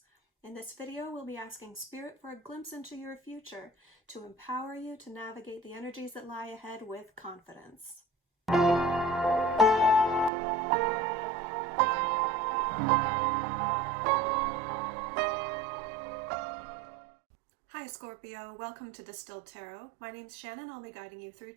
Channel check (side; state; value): left; drops out; at 10.3 s